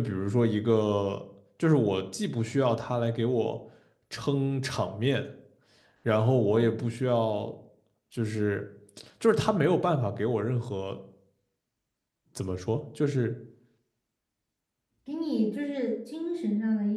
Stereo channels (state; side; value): identical; both; correlation 1.00